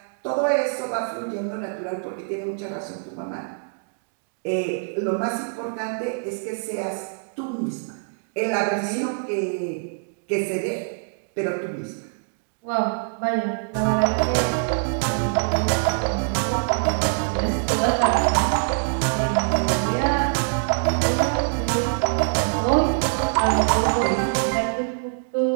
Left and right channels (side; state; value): left; silent; digital silence